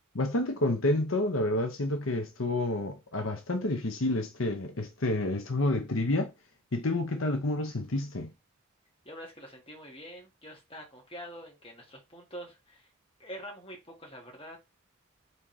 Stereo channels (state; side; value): normal; both; correlation 0.40